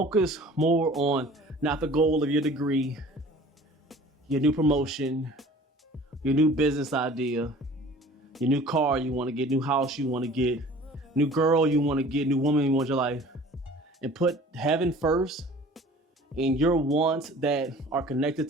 more on not the goal of your degree, your new promotion, your new business idea, your new car you want to get, new house you want to get. new girl you want to get, new woman you want in your life, and put heaven first and your wants that are connected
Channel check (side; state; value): both; normal; correlation 0.46